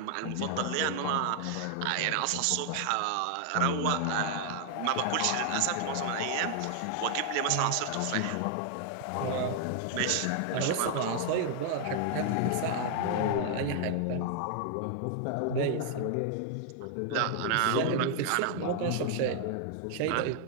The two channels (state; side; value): different; both; correlation 0.00